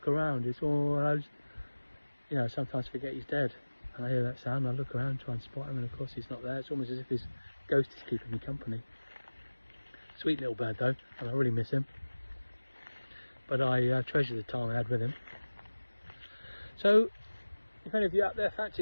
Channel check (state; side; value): inverted; both; correlation -1.00